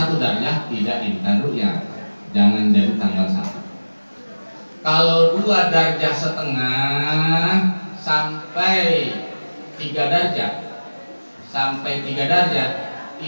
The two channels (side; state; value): both; inverted; correlation -1.00